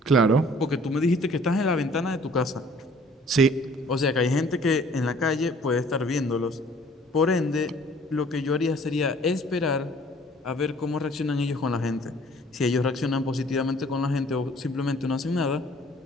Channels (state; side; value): normal; both; correlation 0.55